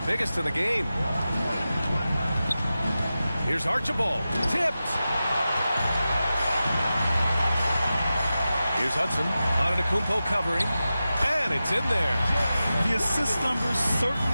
biggest in the game. Here's Archibald. Tipped. Here's Hudson. Antetokounmpo covering. And it's in there. The assist numbers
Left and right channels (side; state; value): both; inverted; correlation -0.93